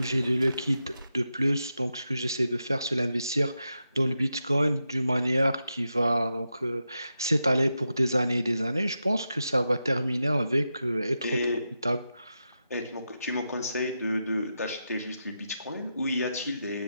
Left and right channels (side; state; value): both; inverted; correlation -0.88